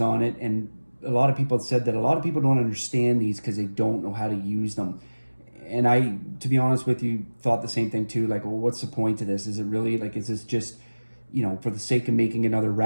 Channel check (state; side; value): inverted; both; correlation -1.00